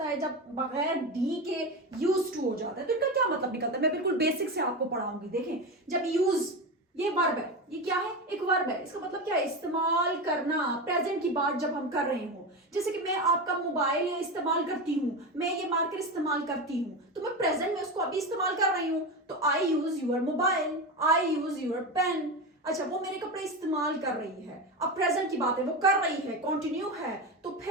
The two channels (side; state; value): both; normal; correlation 0.20